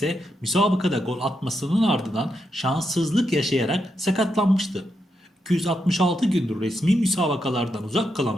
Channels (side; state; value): both; normal; correlation 0.83